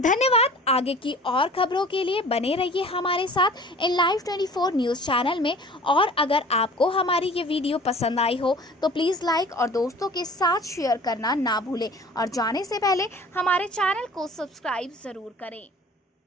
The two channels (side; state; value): both; normal; correlation 0.45